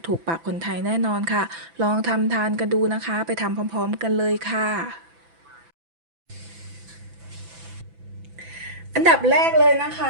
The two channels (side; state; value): left; late; 6.0 ms